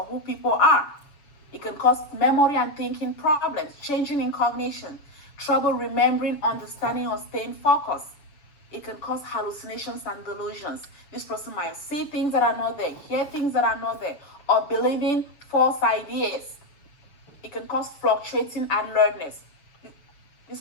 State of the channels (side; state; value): right; late; 7.0 ms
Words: who people are. It can cause memory and thinking problems, changing in cognition, trouble remembering, understanding, or staying focused. It can cause hallucinations and delusions. This person might see things that are not there, hear things that are not there, or believing false ideas. It can cause fluctuating alertness. This